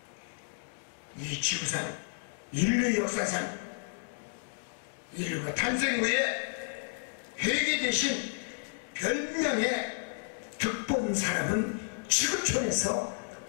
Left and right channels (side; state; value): right; silent; digital silence